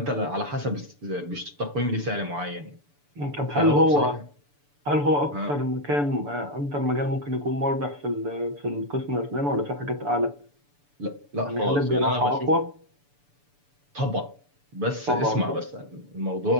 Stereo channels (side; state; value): left; late; 6.9 ms